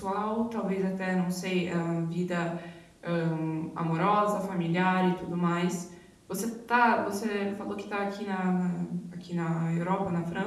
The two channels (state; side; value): identical; both; correlation 1.00